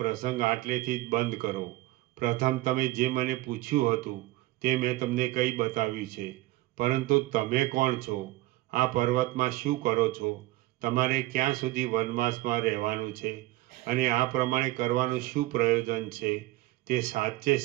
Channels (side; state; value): left; quieter; 18.5 dB